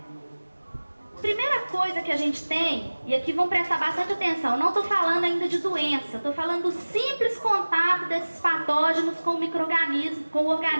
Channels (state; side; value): inverted; both; correlation -1.00